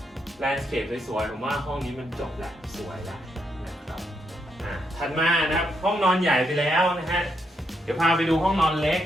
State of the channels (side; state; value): both; normal; correlation 0.79